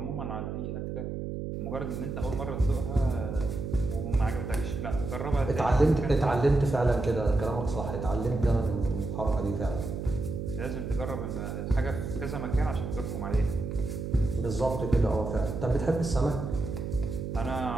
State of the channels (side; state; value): right; noise; hum, 5 dB below the sound